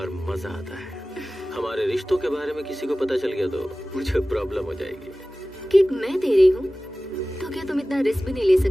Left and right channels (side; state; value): both; normal; correlation 0.97